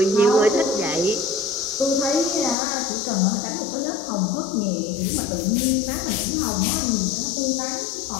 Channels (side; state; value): right; drops out; at 2.6 s